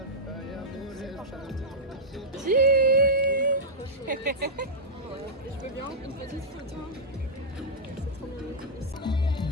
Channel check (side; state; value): both; normal; correlation -0.10